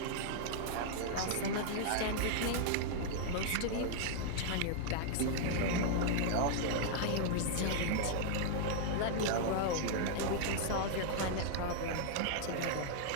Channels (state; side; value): different; both; correlation -0.01